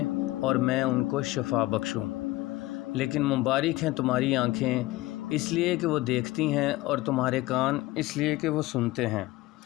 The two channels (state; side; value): quieter; right; 18.6 dB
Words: اور میں ان کو شفا بخشوں۔ لیکن مبارک ہیں تمہاری آنکھیں اس لیے کہ وہ دیکھتی ہیں، اور تمہارے کان اس لیے کہ وہ سنتے ہیں،